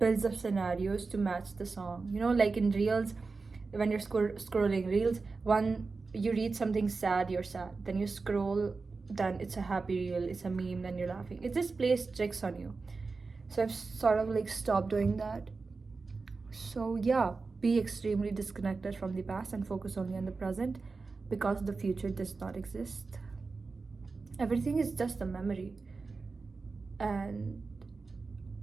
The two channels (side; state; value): left; quieter; 4.2 dB